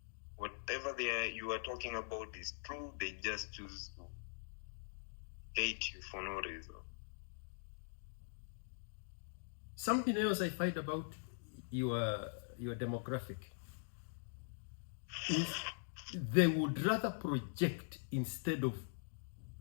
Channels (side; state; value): right; silent; digital silence